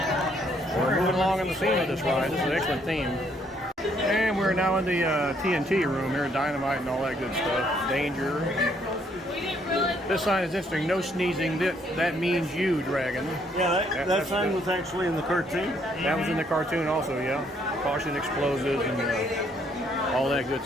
We're moving along in the theme of this ride. This is an excellent theme. And we're now in the TNT room here, dynamite and all that good stuff. Danger. This sign is interesting. No sneezing. That means you, Dragon. Yeah, that sign was actually in the cartoon. That was in the cartoon also, yeah. Caution explosives and all that good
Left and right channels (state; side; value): normal; both; correlation 0.69